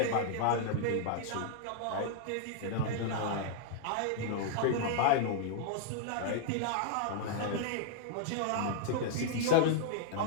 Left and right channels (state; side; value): different; both; correlation -0.01